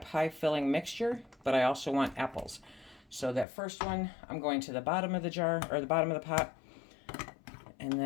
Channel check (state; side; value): drops out; right; at 3.5 s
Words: pie filling mixture, but I also want apples. So that first one, I'm going to the bottom of the jar, or the bottom of the pot. And